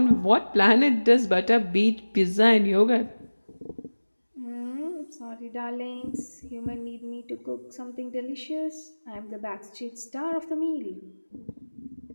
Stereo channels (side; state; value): both; inverted; correlation -1.00